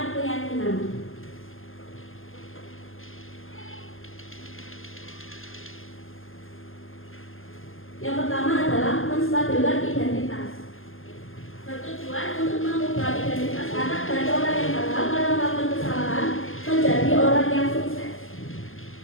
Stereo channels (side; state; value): right; late; 0.59 ms